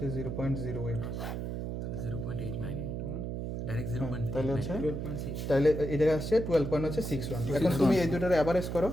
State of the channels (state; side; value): noise; right; hum, 4 dB below the sound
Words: 0.08 ডাইরেক্ট 0.8 তাহলে হচ্ছে তাহলে এটা আসছে 12.61। এখন তুমি এই দুটোর অ্যাভারেজ করো,